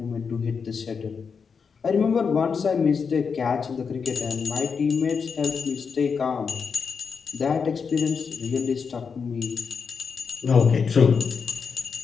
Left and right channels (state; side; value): quieter; right; 5.8 dB